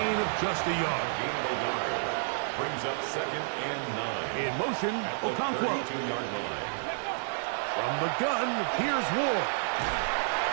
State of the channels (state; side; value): silent; left; digital silence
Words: of just a yard. Gain of a yard. Brings up 2nd and 9. In motion, Okonkwo. 32-yard line. From the gun, here's Ward.